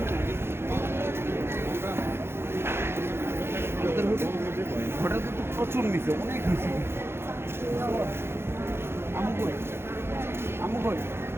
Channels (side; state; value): left; late; 0.12 ms